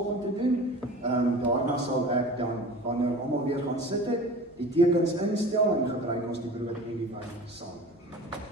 te doen. Daarna sal ek dan, wanneer almal weer gaan sit het, die tekens instel en gebruik ons die brood en die wyn saam.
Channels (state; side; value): normal; both; correlation 0.38